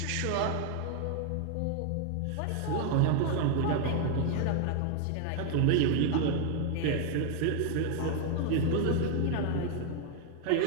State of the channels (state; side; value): different; both; correlation 0.00